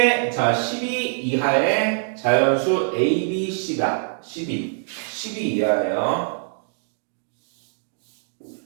자, 12 이하의 자연수 A, B, C다. 12 이하예요.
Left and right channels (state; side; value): silent; left; digital silence